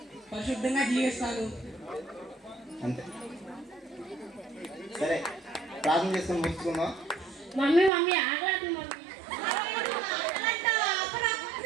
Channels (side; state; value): left; drops out; at 7.9 s